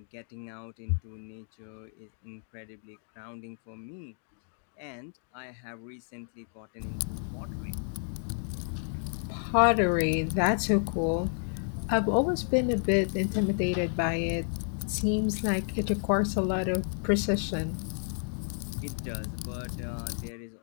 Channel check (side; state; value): right; silent; 57 dB below the other